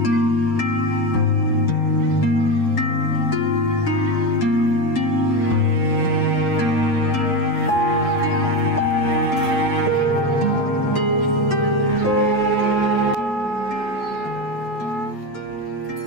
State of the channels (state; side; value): late; right; 7.1 ms